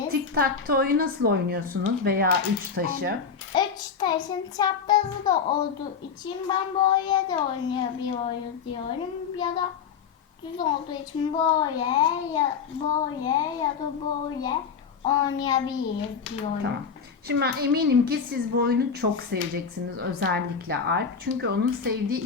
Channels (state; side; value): quieter; right; 6.2 dB